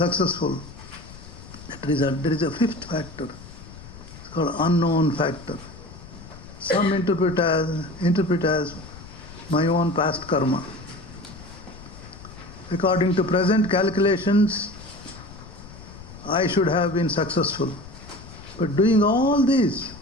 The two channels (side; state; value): left; noise; rumble, 17 dB below the sound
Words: There is a fifth factor. It's called unknown factor. Some interpret as my own past karma. According to present calculations, I should have been successful. But doing all this,